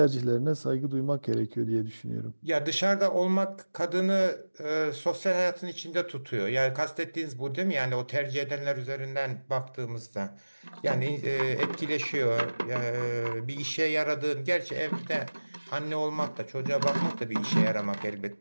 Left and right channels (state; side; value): inverted; both; correlation -1.00